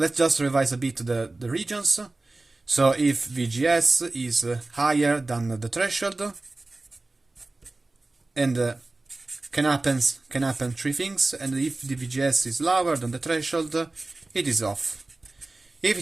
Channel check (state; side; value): quieter; left; 3.2 dB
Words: just revise a bit the regions. So if VGS is higher than the threshold, and can happen three things, and if the VGS is lower than the threshold, it is off. If